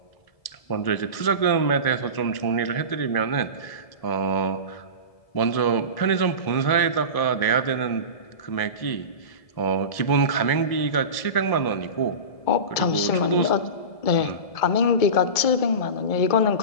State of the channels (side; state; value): right; late; 1.7 ms